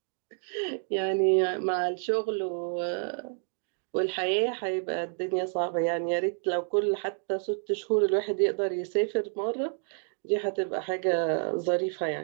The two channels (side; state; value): left; silent; 58 dB below the other